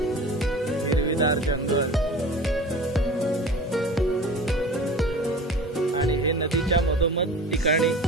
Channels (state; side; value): normal; both; correlation 0.39